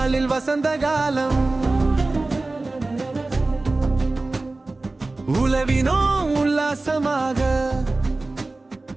வசந்த காலம். உலவினோம் உல்லாசமாக,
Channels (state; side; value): quieter; left; 3.2 dB